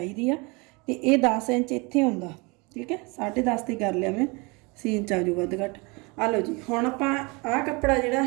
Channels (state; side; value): quieter; left; 28.0 dB